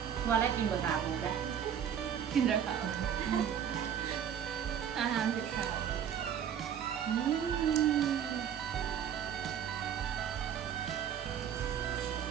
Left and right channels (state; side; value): quieter; left; 8.9 dB